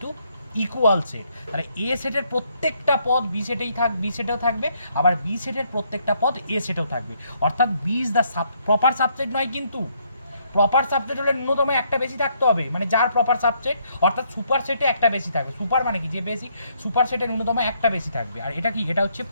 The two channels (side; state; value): both; inverted; correlation -0.71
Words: ইকুয়াল সেট। তাহলে এ সেটের প্রত্যেকটা পদ বি সেটেই বি সেটেও থাকবে, আবার বি সেটের প্রত্যেকটা পদ এ সেটেও থাকবে। অর্থাৎ B is the proper subset নয়, কিন্তু প্রপার সাবসেট হলে ন্যূনতম একটা বেশি থাকতে হবে, মানে যার প্রপার সাবসেট, অর্থাৎ সুপার সেটে একটা বেশি থাকবে। সুপার মানে কি, যে বেশি, সুপার সেটে ন্যূনতম একটা বেশি থাকবে। আর এটা কি, এটা হচ্ছে